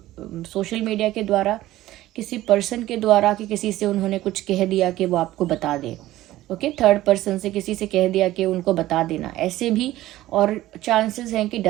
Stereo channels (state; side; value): quieter; left; 15.6 dB